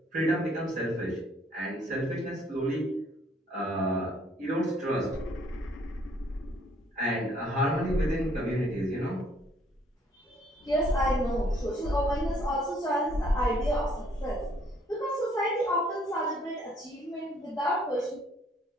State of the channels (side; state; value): both; normal; correlation 0.64